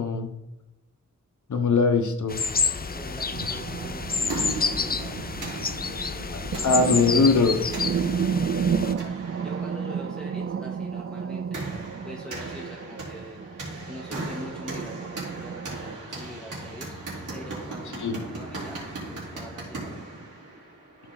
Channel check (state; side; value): normal; both; correlation 0.27